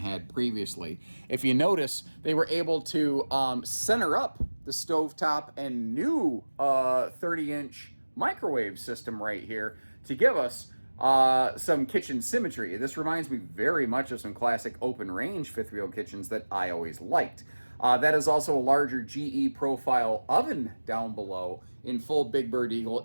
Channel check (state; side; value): inverted; both; correlation -1.00